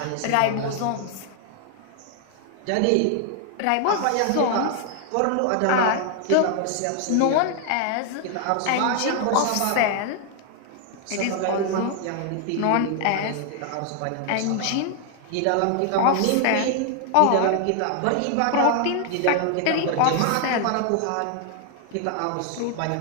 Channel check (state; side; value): different; both; correlation 0.00